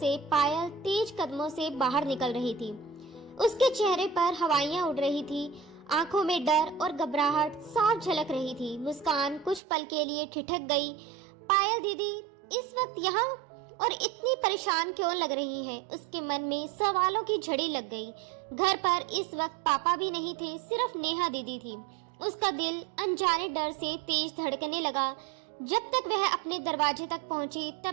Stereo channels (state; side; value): drops out; left; at 9.6 s